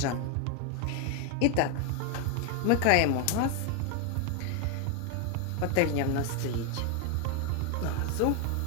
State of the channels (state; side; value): different; both; correlation 0.01